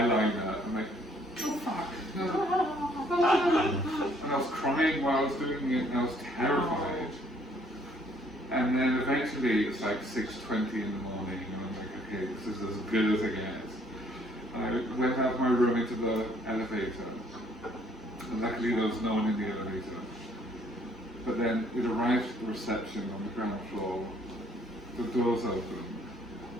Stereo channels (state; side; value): normal; both; correlation 0.64